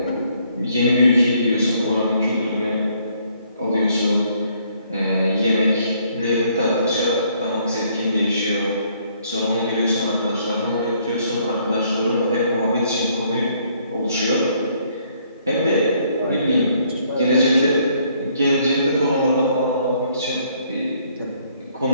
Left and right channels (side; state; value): both; inverted; correlation -0.67